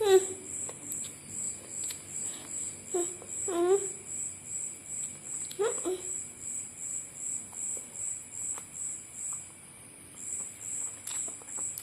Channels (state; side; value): identical; both; correlation 1.00